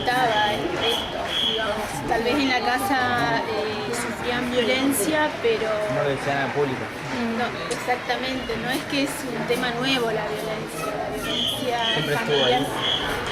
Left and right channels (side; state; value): both; identical; correlation 1.00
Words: esto, digamos. Tal vez en la casa sufrían violencia, pero No lo decían al público. no, exactamente, no es que es un tema nuevo la violencia Siempre estuvo familiar ahí.